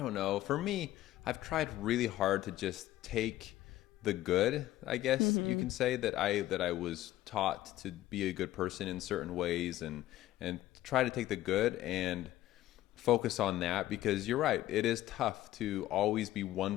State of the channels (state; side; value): quieter; right; 14.7 dB